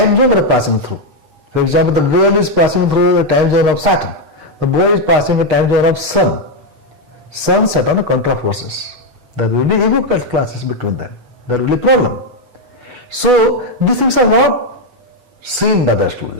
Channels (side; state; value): left; late; 8.1 ms